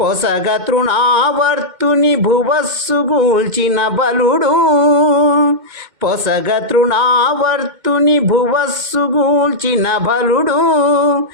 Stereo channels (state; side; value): late; left; 2.1 ms